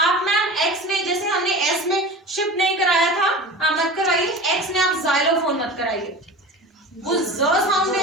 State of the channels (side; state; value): both; normal; correlation 0.34